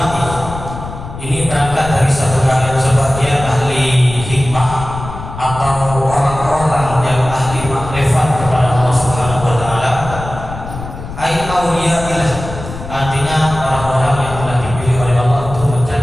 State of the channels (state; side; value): noise; left; rumble, 10 dB below the sound